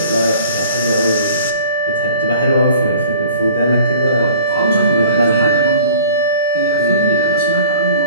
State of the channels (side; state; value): both; inverted; correlation -0.47